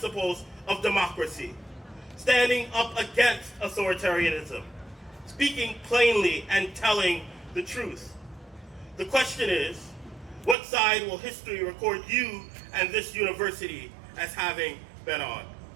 of democracy, standing up against authoritarianism, speaking plainly and telling the truth. The question is, what side will history record you and this university as having been on?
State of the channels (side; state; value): left; drops out; at 10.6 s